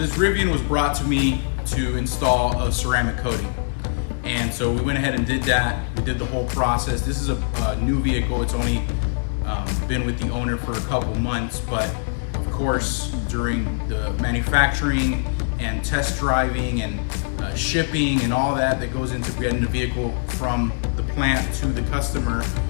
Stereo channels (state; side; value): silent; right; 64 dB below the other